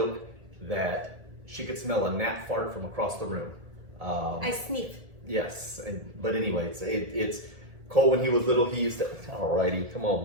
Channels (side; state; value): left; late; 1.8 ms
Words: that she could smell a gnat fart from across the room. I sneeze. Yes, but anyways, it's Cole when he was little. He used to. Alrighty, come